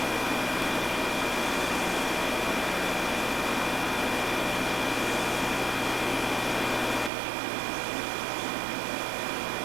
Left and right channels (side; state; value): left; drops out; at 7.1 s